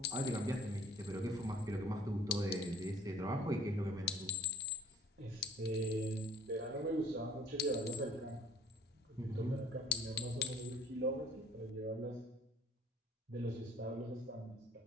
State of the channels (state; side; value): normal; both; correlation 0.53